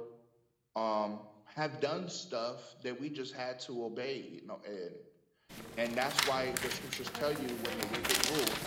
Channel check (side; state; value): both; identical; correlation 1.00